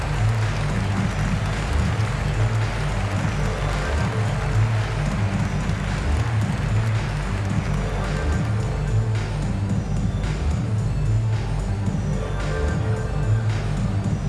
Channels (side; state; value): both; identical; correlation 1.00